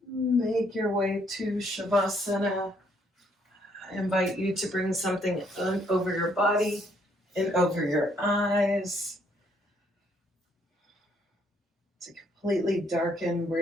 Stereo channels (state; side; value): normal; both; correlation 0.69